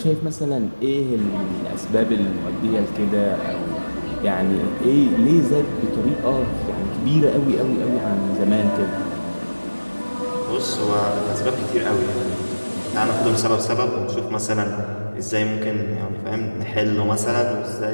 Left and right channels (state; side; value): inverted; both; correlation -1.00